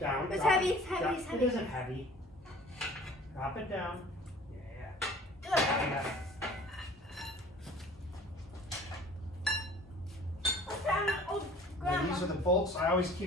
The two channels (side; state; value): both; normal; correlation 0.48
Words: It's drop heavy. it. It's heavy. Drop- It's heavy. It isn't heavy. Drop it down. Yeah. Good. Yeah. These are the bolts. I always